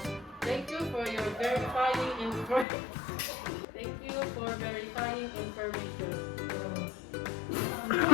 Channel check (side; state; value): right; drops out; at 2.7 s